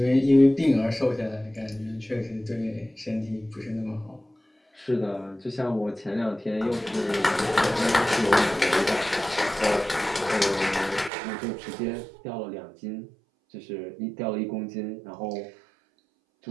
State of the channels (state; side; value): drops out; left; at 11.1 s